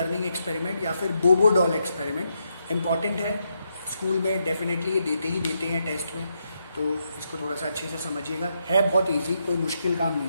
experiment या फिर बोबो डॉल एक्सपेरिमेंट इंपॉर्टेंट है, स्कूल में डेफिनेटली ये देते ही देते हैं टेस्ट में, तो इसको थोड़ा सा अच्छे से समझिएगा, है बहुत इजी, कोई मुश्किल काम नहीं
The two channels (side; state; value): both; inverted; correlation -0.80